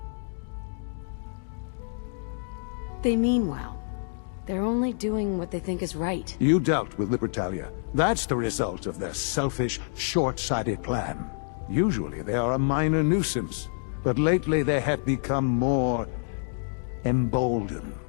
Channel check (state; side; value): silent; right; digital silence